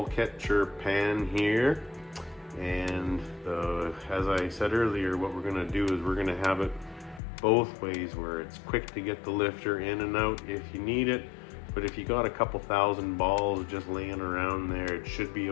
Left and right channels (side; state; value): right; drops out; at 7.2 s